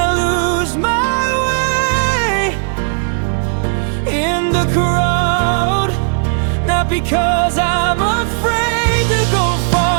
lose my way in the crowd. Not because I'm afraid to go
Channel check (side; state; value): left; silent; digital silence